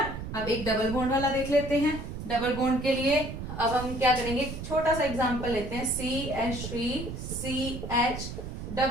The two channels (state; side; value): noise; right; rumble, 7 dB below the sound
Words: अब एक डबल बॉन्ड वाला देख लेते हैं। डबल बॉन्ड के लिए अब हम क्या करेंगे, छोटा सा एग्जांपल लेते हैं, CH3, CH